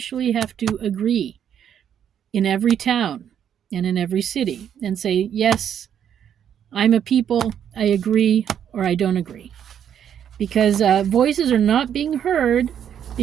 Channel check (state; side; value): quieter; left; 9.1 dB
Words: have to agree in every town and in every city and say, yes, I'm a people, I agree, or I don't agree. Because voices are not being heard